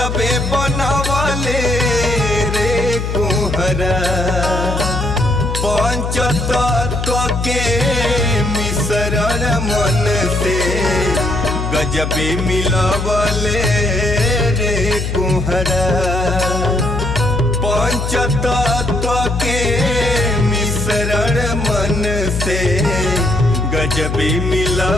बनवले रे कुहरा पंचतत्व के मिश्रण मन से गजबे मिलवले रे कुहरा पंचतत्व के मिश्रण मन से गजबे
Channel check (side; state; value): left; noise; hum, 3 dB below the sound